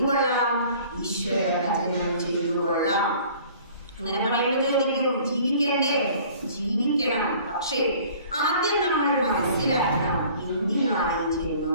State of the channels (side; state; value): both; inverted; correlation -0.51